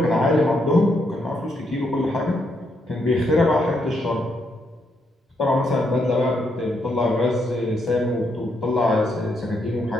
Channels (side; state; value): both; normal; correlation 0.77